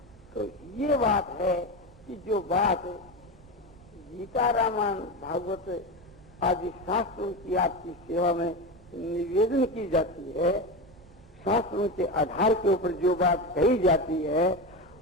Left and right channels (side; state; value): both; normal; correlation 0.20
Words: तो ये बात है कि जो बात गीता रामायण भागवत आदि शास्त्रों की आपकी सेवा में निवेदन की जाती है, शास्त्रों के आधार के ऊपर जो बात कही जाती है,